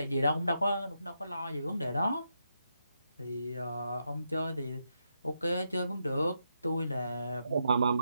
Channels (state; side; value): inverted; both; correlation -0.83